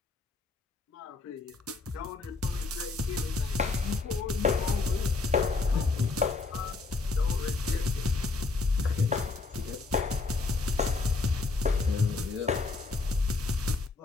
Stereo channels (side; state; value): right; quieter; 3.8 dB